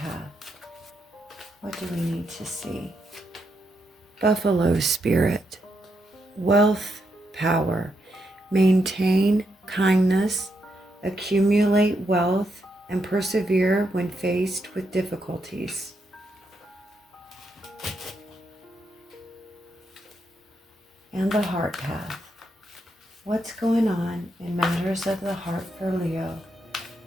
What do we need to see? Buffalo Spirit. Wealth, power. Maintain kindness. Accumulate wealth and persevere when faced with difficulties. And the heart path. What's going on in matters of the heart for Leo?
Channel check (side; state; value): both; normal; correlation 0.80